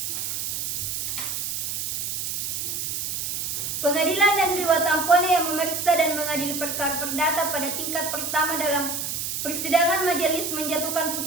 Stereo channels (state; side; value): noise; right; hiss, 2 dB below the sound